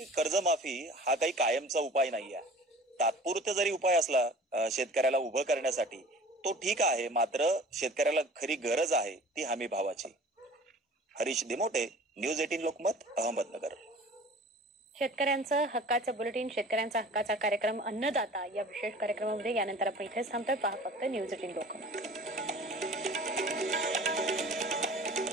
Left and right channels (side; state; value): both; normal; correlation 0.44